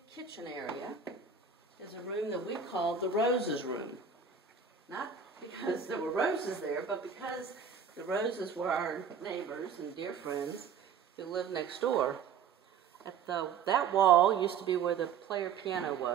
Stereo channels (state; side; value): quieter; left; 6.6 dB